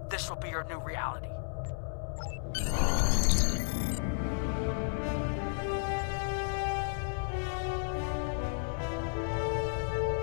this will be your new reality.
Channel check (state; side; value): silent; right; 56 dB below the other